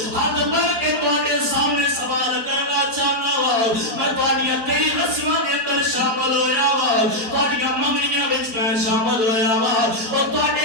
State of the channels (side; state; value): left; late; 4.3 ms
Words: ہاتھ بڑھ کے تواڈے سامنے سوال کرنا چاہنا وا میں تواڈیاں کئی رسماں دے اندر شامل ہویا وا تواڈیاں منگنیاں وچ میں شامل ہویا وا اور